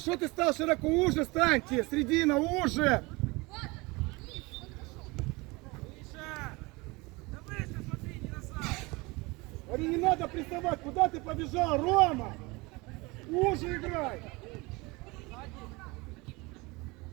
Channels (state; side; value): quieter; left; 24.5 dB